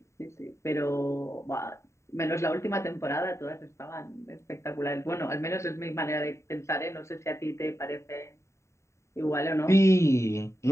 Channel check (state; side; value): late; right; 0.14 ms